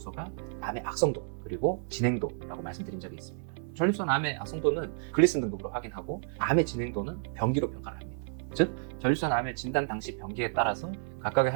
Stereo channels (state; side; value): silent; left; 57 dB below the other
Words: 암의 악성도 그리고 진행도라고 말씀드린 적이 있습니다. 전립선 암의 악성도는 글리슨 등급으로 확인하고 암의 진행도는 병기로 평가를 합니다. 즉, 전립선 암의 진단 당시 병기에 따라서 각각의